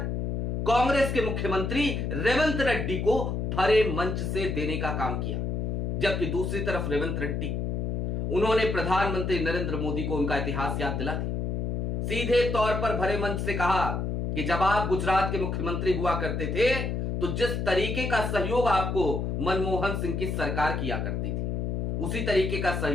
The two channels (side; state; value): left; noise; hum, 1 dB below the sound